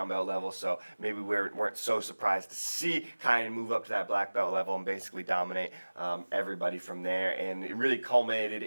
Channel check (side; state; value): both; inverted; correlation -1.00